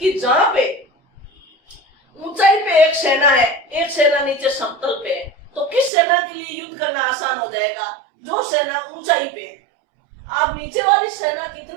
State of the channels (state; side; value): drops out; left; at 5.9 s